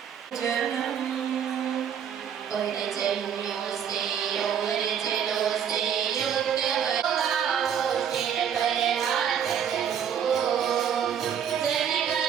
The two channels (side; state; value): left; quieter; 8.4 dB